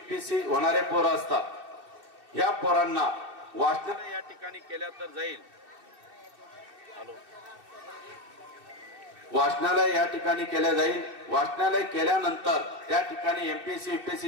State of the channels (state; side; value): late; left; 2.6 ms